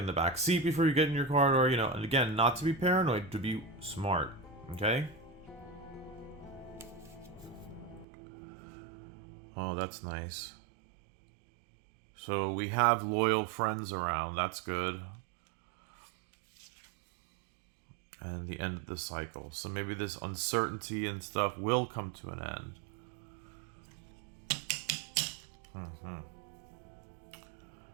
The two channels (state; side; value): drops out; left; at 8.1 s